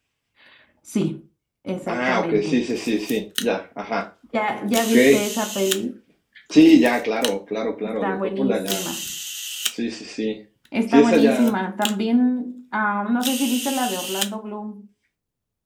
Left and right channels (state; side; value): identical; both; correlation 1.00